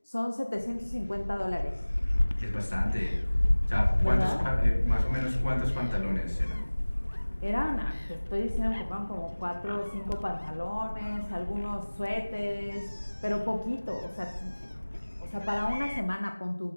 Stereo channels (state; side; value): inverted; both; correlation -1.00